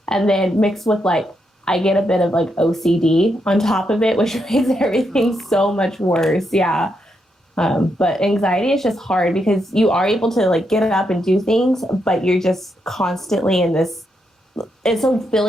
And then mixed with like, I get a bit of like OCD on top of it, which makes everything so much worse. Yeah. But anxiety is just hard because you are able to like get up and do things, but you're just constantly in this, it's a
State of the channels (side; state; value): both; normal; correlation 0.81